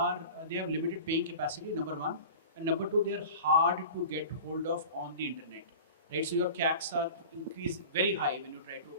limited paying capacity, number one, and number two, they are hard to get hold of on the internet, right? So your CACs are increased very high when you try to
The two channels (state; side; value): inverted; both; correlation -0.37